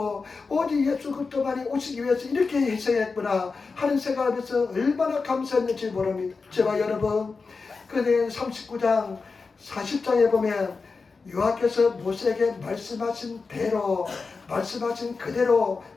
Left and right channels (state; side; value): quieter; right; 4.5 dB